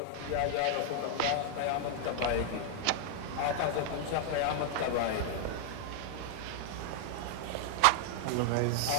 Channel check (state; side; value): different; both; correlation 0.00